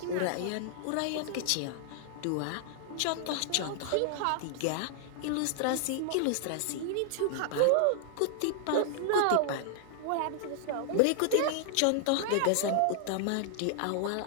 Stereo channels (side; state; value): both; different; correlation 0.00